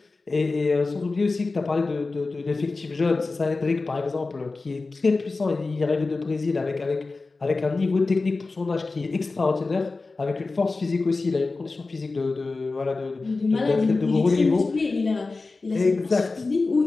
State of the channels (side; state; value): right; quieter; 3.7 dB